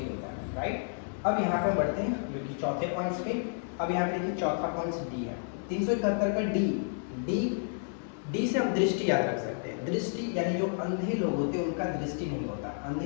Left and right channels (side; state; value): right; silent; digital silence